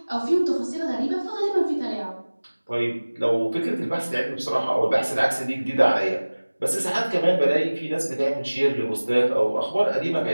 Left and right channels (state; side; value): inverted; both; correlation -1.00